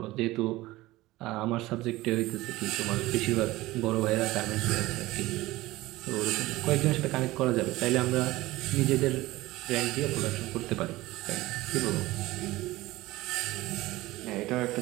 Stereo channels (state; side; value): quieter; left; 18.5 dB